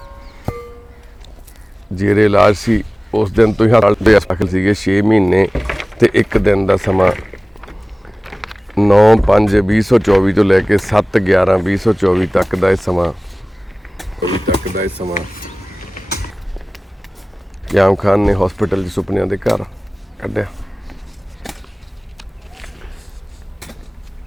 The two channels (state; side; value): normal; both; correlation 0.98